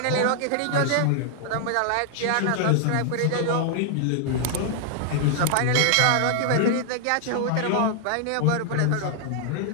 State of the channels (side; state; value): both; different; correlation 0.00